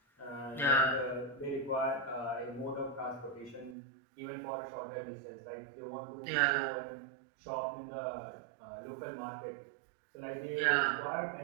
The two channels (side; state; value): left; drops out; at 3.8 s